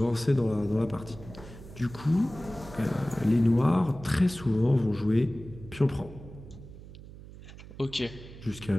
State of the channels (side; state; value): right; noise; hum, 16 dB below the sound